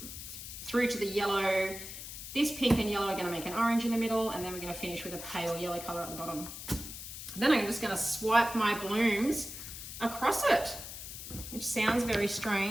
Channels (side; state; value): left; noise; hiss, 10 dB below the sound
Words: to the yellow. This pink and yellow are going to make an orange in the middle, and then we're going to finish with a pale yellow color at the bottom. Then I'm just going to swipe my blooms across it, which sounds very